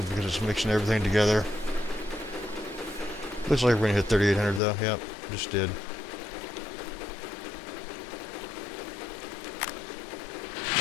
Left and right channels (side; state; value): right; drops out; at 4.6 s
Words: because it's mixing everything together. Looks like we're gonna hit 3,800 though. Yep, just did.